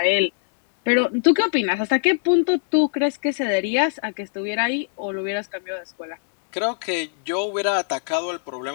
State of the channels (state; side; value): silent; right; digital silence